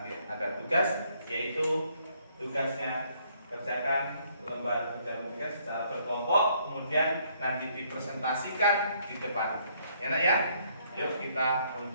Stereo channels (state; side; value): inverted; both; correlation -0.68